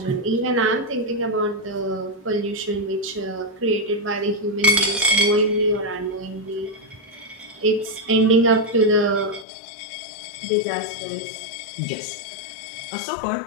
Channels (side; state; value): right; drops out; at 9.5 s